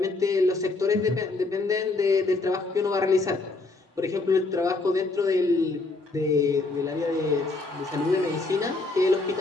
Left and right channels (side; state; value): right; quieter; 3.4 dB